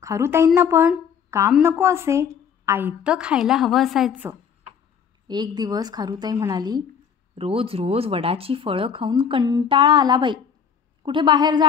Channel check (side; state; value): right; quieter; 7.4 dB